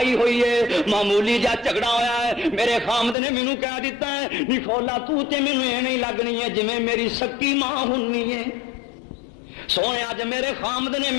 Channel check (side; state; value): right; drops out; at 3.2 s